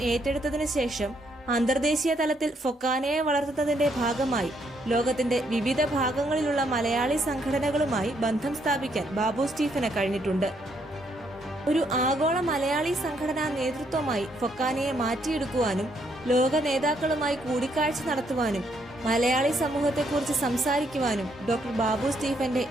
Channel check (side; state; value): both; normal; correlation 0.73